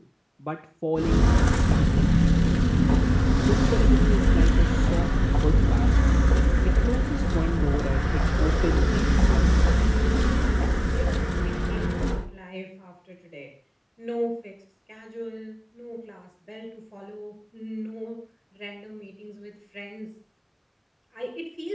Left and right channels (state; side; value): identical; both; correlation 1.00